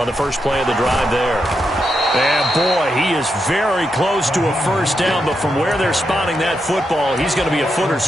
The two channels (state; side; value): normal; both; correlation 0.84